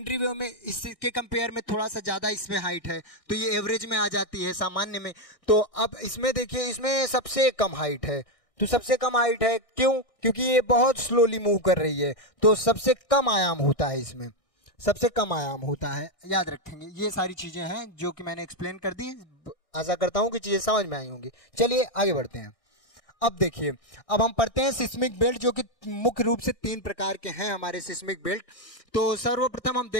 वेव में इसके कंपेयर में थोड़ा सा ज्यादा इसमें हाइट है, तो ये एवरेज में आ जाती है, सामान्य में। तो अब इसमें देखिए, इसमें सबसे कम हाइट है। तो सबसे कम हाइट है क्यों? क्योंकि ये बहुत स्लोली मूव कर रही है, तो सबसे कम आयाम होता है, इसमें सबसे कम आयाम होता है। याद रखेंगे, ये सारी चीजें हैं जो कि मैंने एक्सप्लेन कर दी। आशा करता हूं कि चीजें समझ में आई होंगी। चलिए आगे बढ़ते हैं। अब देखिए, अब हम पढ़ते हैं सिस्मिक बेल्ट, जो कि मुख्य रूप से 3 प्रकार के हैं हमारे सिस्मिक बेल्ट। तो सर्वप्रथम हम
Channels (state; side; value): late; right; 1.6 ms